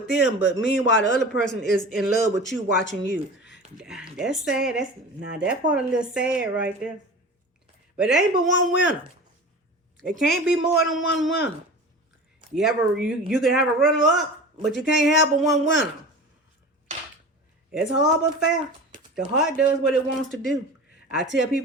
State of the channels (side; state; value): both; normal; correlation 0.35